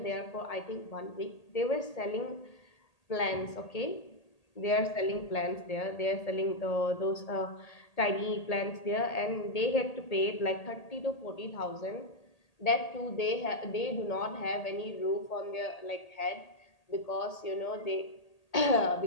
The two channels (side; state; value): right; late; 1.8 ms